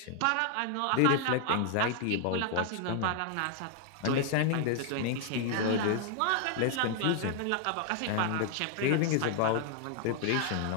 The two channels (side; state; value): both; different; correlation 0.00